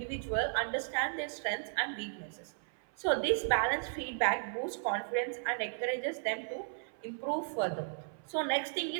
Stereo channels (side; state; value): left; silent; 54 dB below the other